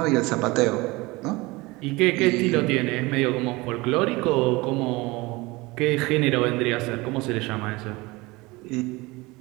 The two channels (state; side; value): quieter; left; 22.6 dB